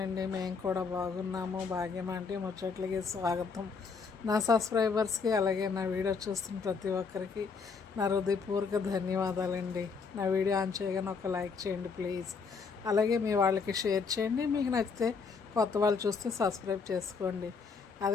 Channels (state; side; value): quieter; right; 5.1 dB